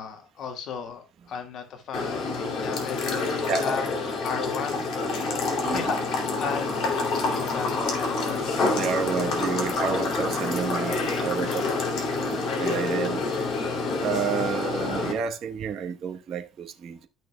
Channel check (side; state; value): both; normal; correlation 0.58